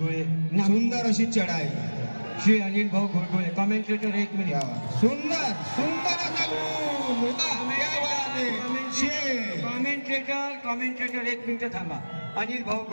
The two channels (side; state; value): both; inverted; correlation -1.00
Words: सुंदर अशी चढाई. श्री अनिल भाऊ गोळगोळे. Commentator 1 minute. सुंदर कॉमेंटेटर 1 मिनिट थांबा. अनिल भाऊ